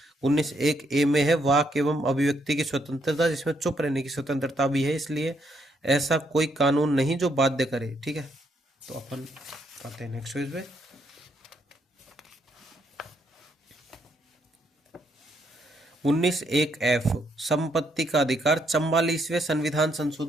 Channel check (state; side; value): normal; both; correlation 0.74